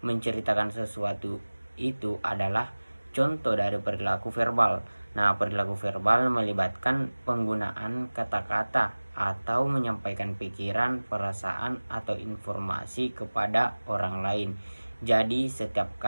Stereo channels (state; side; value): inverted; both; correlation -1.00